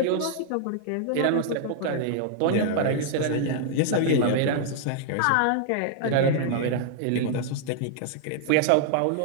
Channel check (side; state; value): both; different; correlation -0.01